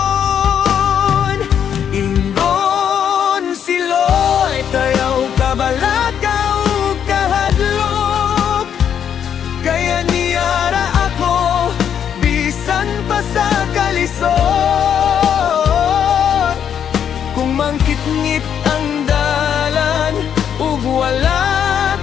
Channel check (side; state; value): right; quieter; 8.6 dB